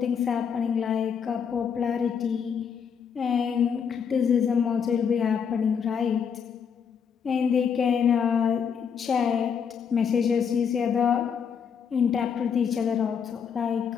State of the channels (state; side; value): quieter; right; 7.1 dB